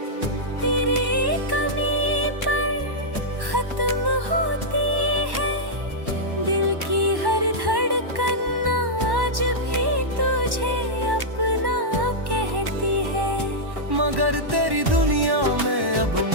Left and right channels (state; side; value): late; left; 1.1 ms